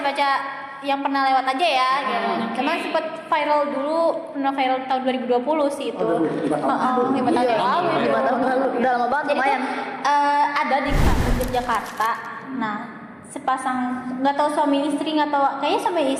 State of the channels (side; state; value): both; identical; correlation 1.00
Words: yang pernah lewat aja ya, gitu. Cuman sempet pernah viral tahun 2020 sih itu. Oh, 5 tahun lalu. 5 tahun yang lalu. Iya, 5 tahun lalu. Udah lama banget lumayan. Ada di Yogyakarta. Nah, sepasang nggak tahu suami istri nggak tahu kayaknya suami